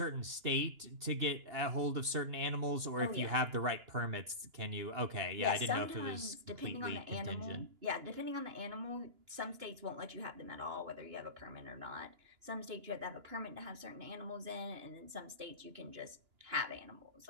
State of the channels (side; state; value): left; late; 2.9 ms